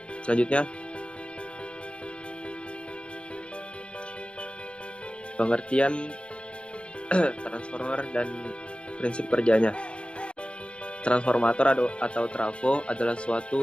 pengertian transformer dan prinsip kerjanya. Transformator atau trafo adalah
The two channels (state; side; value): late; right; 0.056 ms